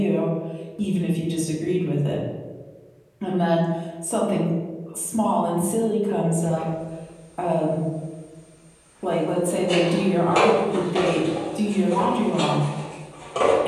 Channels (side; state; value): both; identical; correlation 1.00